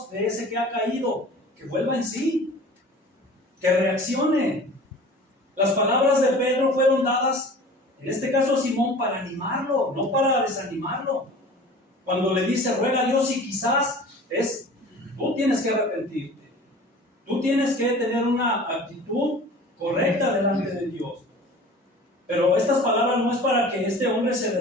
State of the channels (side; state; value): both; normal; correlation 0.42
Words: de ese que ha caído? Que vuelva en sí, que reaccione. Las palabras de Pedro fueron dadas, en este caso a Simón, para animarlo, no para desanimarlo. Cuando le dice, ruega a Dios y quizás tú tienes que arrepentirte. Tú tienes que tener una actitud correcta delante de Dios. Pero estas palabras no es para que este hombre se